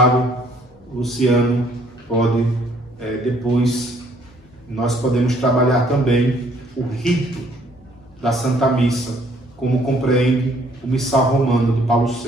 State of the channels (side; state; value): left; noise; hum, 29 dB below the sound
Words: Luciano pode, depois, nós podemos trabalhar também o rito da Santa Missa, como compreende o Missal Romano de Paulo